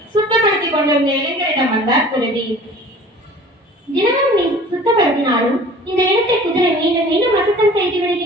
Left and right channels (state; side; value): normal; both; correlation 0.46